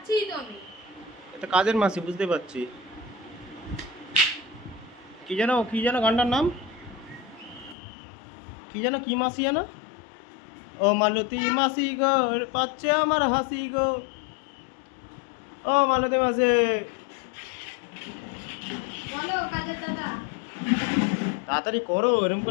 তো আমি। এটা কাজের মাসি, বুঝতে পারছি। কি যেন গানটার নাম কি যেন, কি মাসি যেন? ও মালতী মাসি গো, পাচ্ছে আমার হাসি গো। ও মালতী মাসি, বলো কাজের দাদা। তাড়াতাড়ি করো, এরকম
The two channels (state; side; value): drops out; right; at 7.8 s